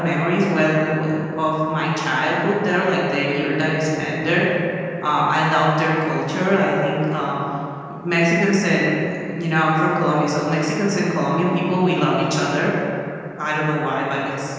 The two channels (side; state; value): both; identical; correlation 1.00